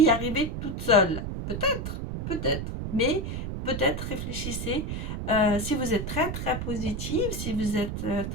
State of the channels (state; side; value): noise; right; rumble, 4 dB below the sound